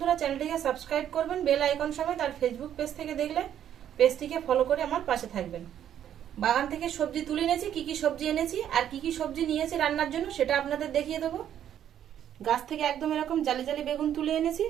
চ্যানেলটিকে সাবস্ক্রাইব করবেন বেল আইকন সমেত, আর ফেসবুক পেজ থেকে দেখলে পেজটিকে ফলো করে আমার পাশে থাকবেন। বাগান থেকে সবজি তুলে এনেছি, কি কি সবজি এনেছি আর কি কি সবজি নিয়েছি রান্নার জন্য সেটা আপনাদের দেখিয়ে দেবো। গাছ থেকে একদম এরকম জালি জালি বেগুন তুলে এনেছি,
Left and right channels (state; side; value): quieter; left; 10.2 dB